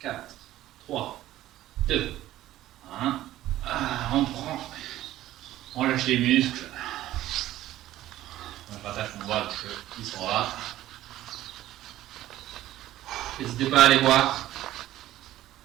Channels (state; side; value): quieter; left; 14.4 dB